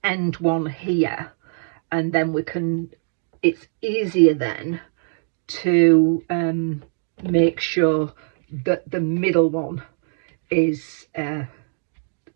end one here, and then we can, it's easier then to make sure that the middle one is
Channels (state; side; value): silent; left; digital silence